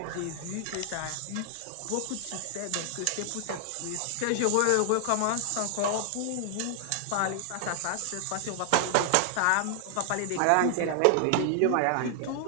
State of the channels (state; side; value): different; both; correlation 0.00